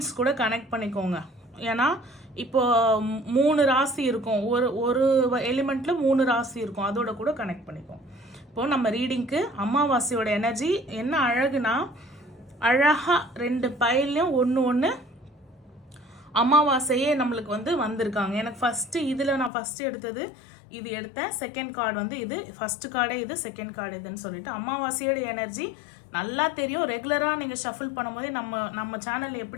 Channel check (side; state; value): right; drops out; at 19.5 s